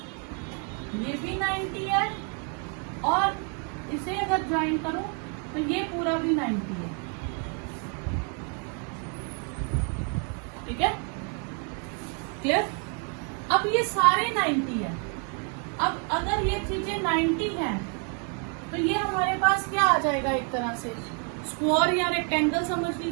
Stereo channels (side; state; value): left; quieter; 39.2 dB